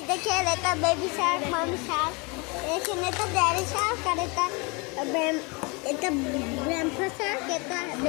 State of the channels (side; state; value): right; quieter; 29.6 dB